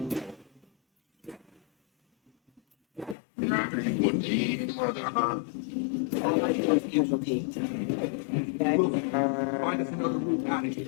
Casualty. Wilson, find us another route out of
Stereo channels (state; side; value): drops out; right; at 3.2 s